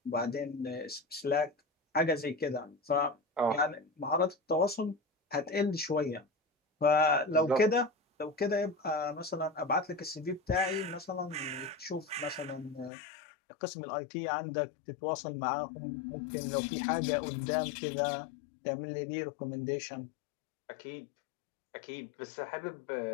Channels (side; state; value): right; drops out; at 12.9 s